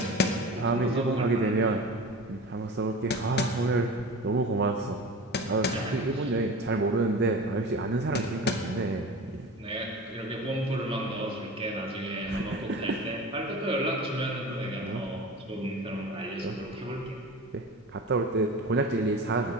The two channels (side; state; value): both; normal; correlation 0.34